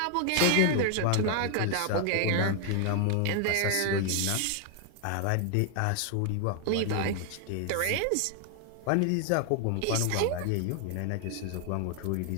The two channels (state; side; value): different; both; correlation 0.00